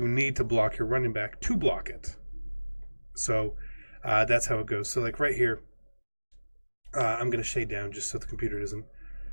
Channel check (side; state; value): both; inverted; correlation -1.00